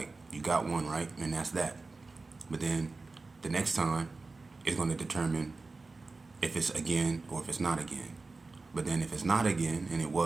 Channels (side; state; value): left; quieter; 3.7 dB